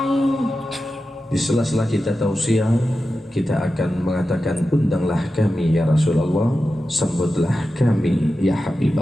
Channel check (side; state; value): both; normal; correlation 0.92